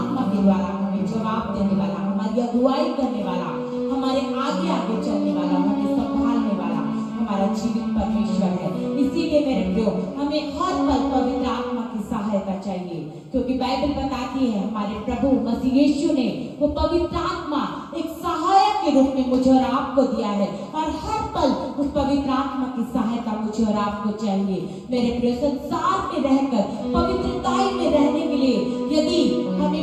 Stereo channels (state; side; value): identical; both; correlation 1.00